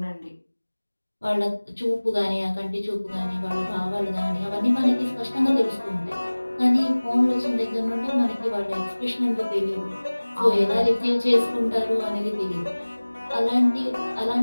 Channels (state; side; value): inverted; both; correlation -1.00